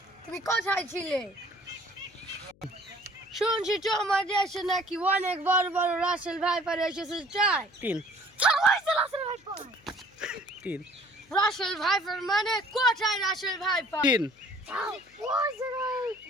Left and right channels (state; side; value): noise; left; hum, 30 dB below the sound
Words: তুমি কোথায় ছিলে শুনছি তোমার দেশে নাকি অনেক বড় বড় রাসেল ভাইপার এসেছে চাই রাসেল ভাইপার মানে কোথায় রাসেল ভাইপার